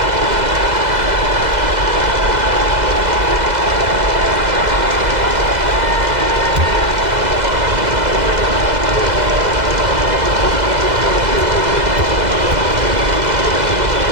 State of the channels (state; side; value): late; left; 2.0 ms